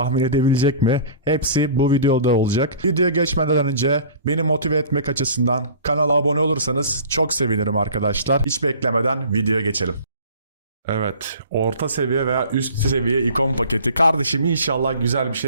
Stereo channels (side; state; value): both; inverted; correlation -0.44